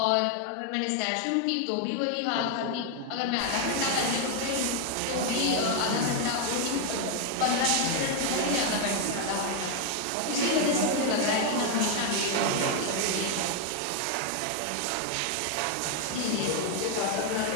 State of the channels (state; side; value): different; both; correlation 0.01